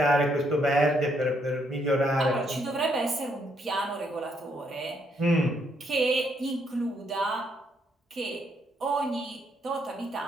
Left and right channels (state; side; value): normal; both; correlation 0.73